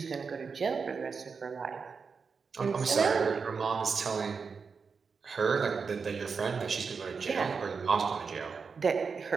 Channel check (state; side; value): quieter; left; 5.3 dB